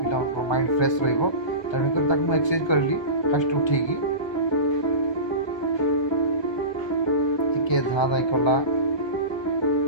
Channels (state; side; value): late; right; 1.2 ms